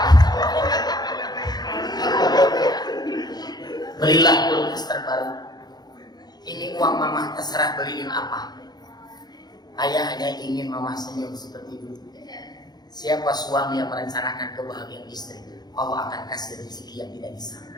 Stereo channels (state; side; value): late; right; 0.20 ms